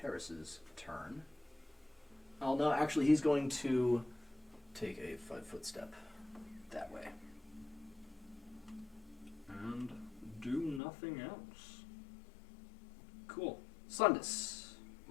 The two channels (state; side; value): drops out; right; at 10.8 s